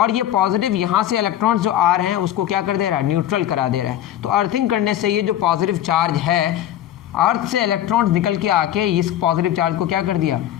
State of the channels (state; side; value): quieter; right; 11.8 dB